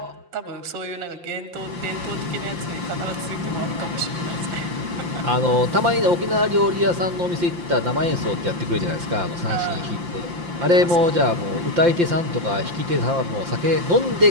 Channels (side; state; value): left; late; 5.8 ms